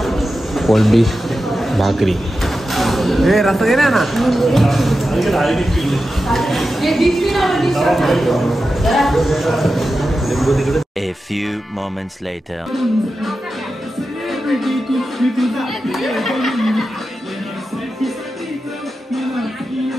कोळंबी भाकरी हे रस्ता दे ना A few moments later.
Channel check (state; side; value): normal; both; correlation 0.91